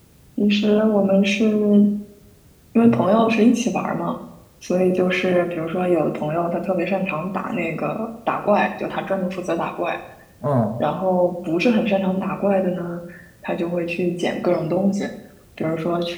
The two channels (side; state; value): both; identical; correlation 1.00